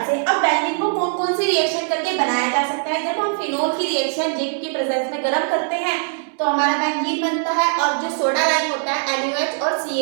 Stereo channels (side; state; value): left; silent; digital silence